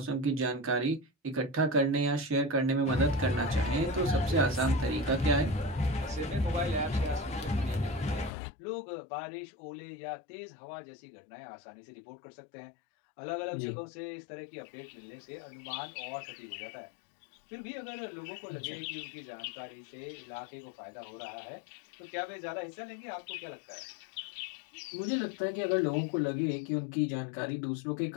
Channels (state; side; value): drops out; right; at 8.3 s